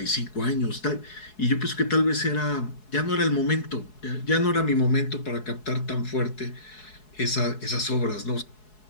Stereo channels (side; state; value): right; late; 4.7 ms